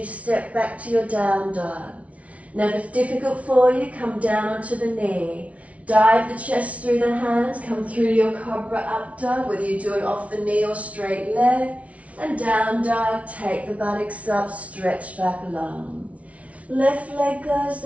step back to your down dog. Now if it's difficult for you, come down onto the knee. Dive the chest through the hands, come through your cobra up dog, whether you do it off the knee or straight leg. And down dog, take the buttocks up, stretch back long. Left leg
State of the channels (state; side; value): late; left; 0.065 ms